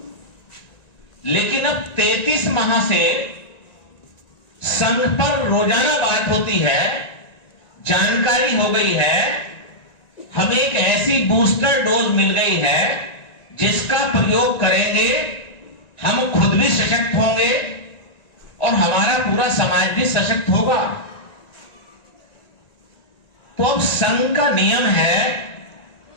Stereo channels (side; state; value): right; late; 1.9 ms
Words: लेकिन अब 33 माह से संघ पर रोजाना बात होती है, जानकारी हो गई है, हमें एक ऐसी बूस्टर डोज मिल गई है जिसका प्रयोग करेंगे, हम खुद भी सशक्त होंगे और हमारा पूरा समाज भी सशक्त होगा। तो अब संघ का नियम है